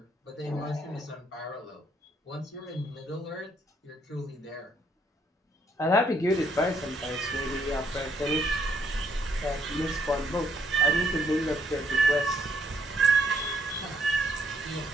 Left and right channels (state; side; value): normal; both; correlation 0.70